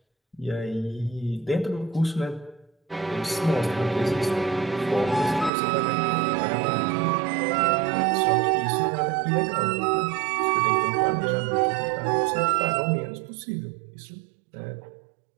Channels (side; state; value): left; drops out; at 5.5 s